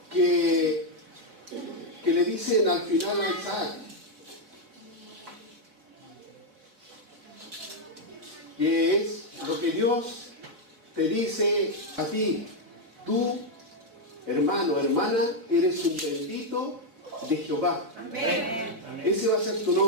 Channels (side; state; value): left; late; 4.3 ms